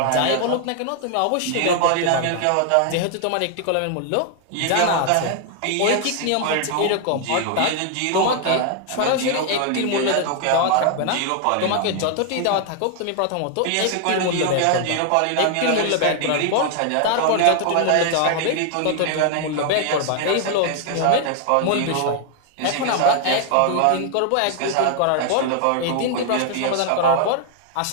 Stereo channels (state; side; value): different; both; correlation 0.00